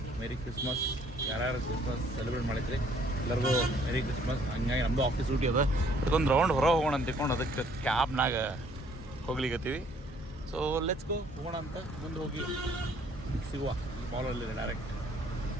ಮೇರಿ ಕ್ರಿಸ್ಮಸ್. ಯಾರ್ಯಾರು ಕ್ರಿಸ್ಮಸ್ ಸೆಲೆಬ್ರೇಟ್ ಮಾಡಿದ್ರಿ ಎಲ್ಲರಿಗೂ ಮೇರಿ ಕ್ರಿಸ್ಮಸ್. ಹಂಗಾಗಿ ನಮ್ಮದು ಆಫೀಸ್ ಡ್ಯೂಟಿ ಅದ, ಅದಕ್ಕೊಂದು ರೌಂಡ್ ಹೊರ ಹೋಗೋಣ ಅಂತ ತಿಳ್ಕೊಂಡು ಅದಕ್ಕೆ ಕ್ಯಾಬ್ನಾಗ ಹೋಗ್ಲಿಕತ್ತೀವಿ. ಸೊ ಲೆಟ್ಸ್ ಗೋ, ಹೋಗೋಣ ಅಂತ. ಮುಂದೆ ಹೋಗಿ ಸಿಗುವ ಈ ಮಾಲಲ್ಲಿ ಡೈರೆಕ್ಟ್.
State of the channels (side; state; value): both; normal; correlation 0.62